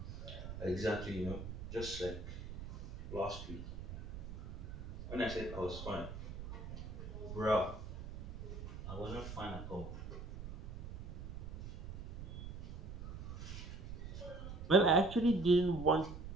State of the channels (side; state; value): right; noise; rumble, 9 dB below the sound